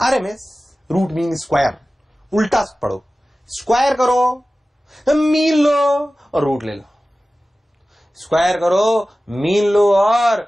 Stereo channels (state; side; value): normal; both; correlation 0.96